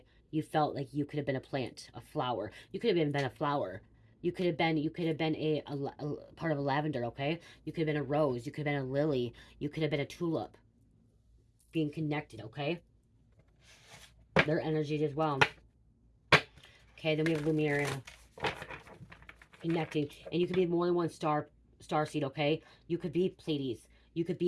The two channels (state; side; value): identical; both; correlation 1.00